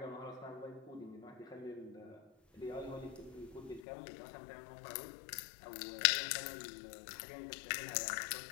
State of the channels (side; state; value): right; drops out; at 3.8 s